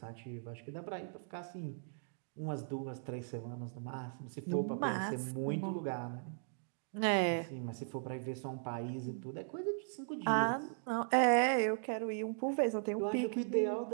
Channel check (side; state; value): left; silent; digital silence